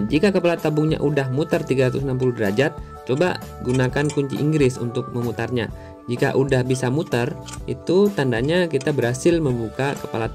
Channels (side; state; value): both; identical; correlation 1.00